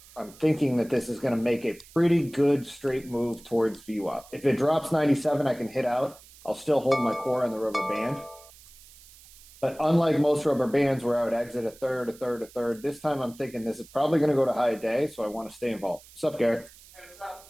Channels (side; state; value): right; noise; hiss, 22 dB below the sound